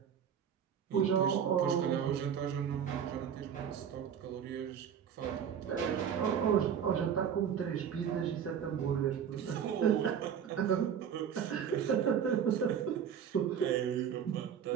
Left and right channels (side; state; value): left; quieter; 8.2 dB